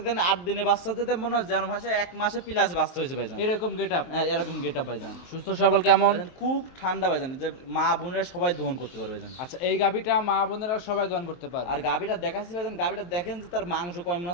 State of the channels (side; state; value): right; late; 23 ms